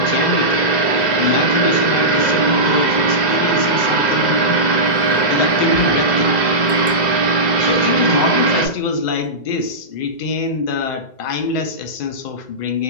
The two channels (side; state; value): right; late; 2.0 ms